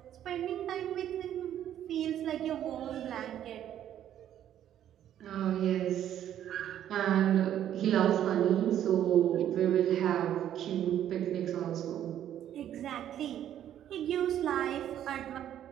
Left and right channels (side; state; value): left; quieter; 10.9 dB